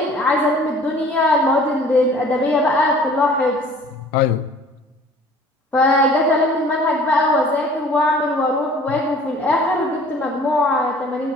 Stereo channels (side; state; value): both; normal; correlation 0.50